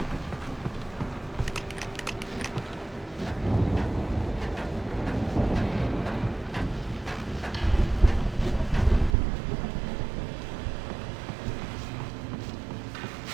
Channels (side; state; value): left; drops out; at 9.2 s